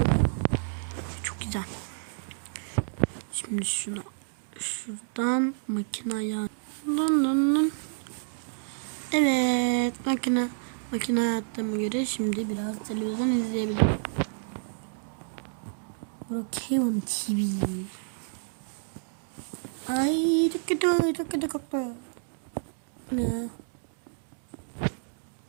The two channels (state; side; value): silent; left; digital silence